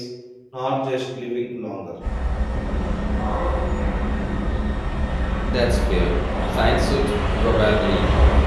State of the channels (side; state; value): both; identical; correlation 1.00